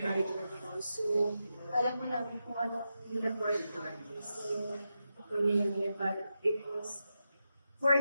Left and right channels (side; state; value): both; inverted; correlation -0.89